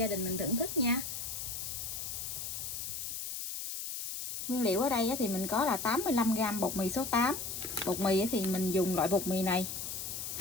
đình mình thưởng thức nha. Nguyên liệu ở đây thì mình có là 85g bột mì số 8. Bột mì thì mình dùng loại bột mì này.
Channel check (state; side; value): noise; left; hiss, 5 dB below the sound